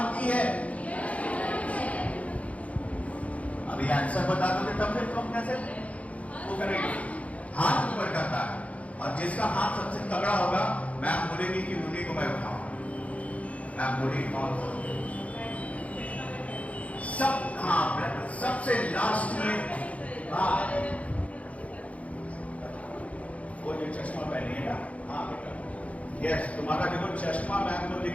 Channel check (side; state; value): right; late; 0.066 ms